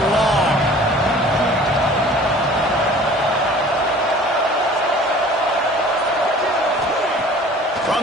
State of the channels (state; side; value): normal; both; correlation 0.47